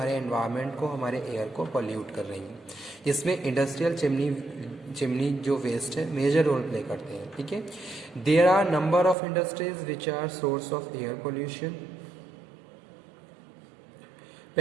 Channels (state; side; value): drops out; left; at 9.2 s